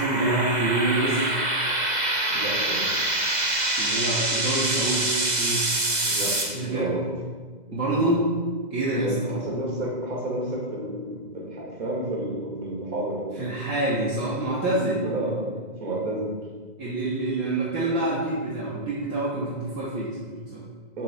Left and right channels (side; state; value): left; late; 2.0 ms